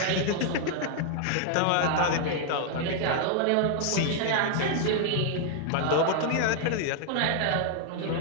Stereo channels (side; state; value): both; different; correlation 0.00